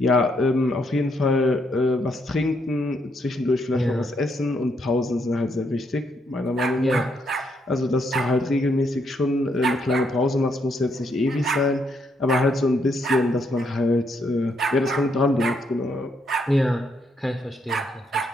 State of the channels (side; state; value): both; normal; correlation 0.75